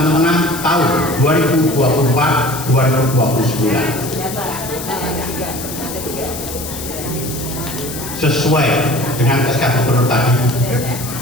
Tengah tahun 2024-2029. Sesuai dengan SK Gubernur tadi,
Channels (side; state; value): left; noise; hiss, 9 dB below the sound